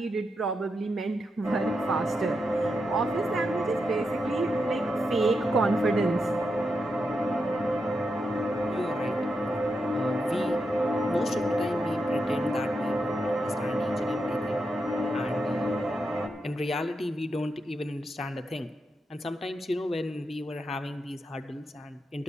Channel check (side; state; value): both; normal; correlation 0.85